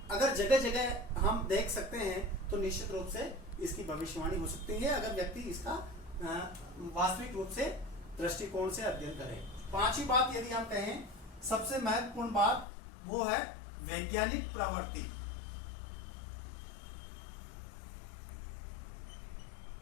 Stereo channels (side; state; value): right; drops out; at 12.7 s